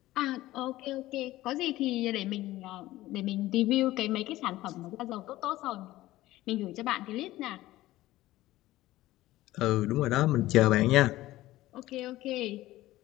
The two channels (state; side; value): quieter; right; 16.4 dB